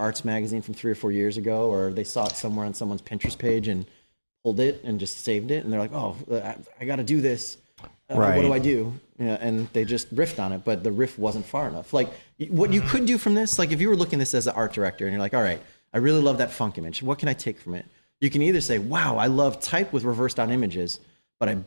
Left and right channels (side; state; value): both; inverted; correlation -1.00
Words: magazine from 3 or 4 years ago, or they saw it somewhere on someone's Pinterest page and pulled it and just saved it. And they're like, oh, I got to do this. Right. What do I do? Yeah, and they just riffed on it, but the riff wasn't far enough. Like, what you could do from this, like if you were looking at this as an art director and you're like, all right, I really love that funk image. What can I take from it? You can either say, wow, I love type with reversed on images, but I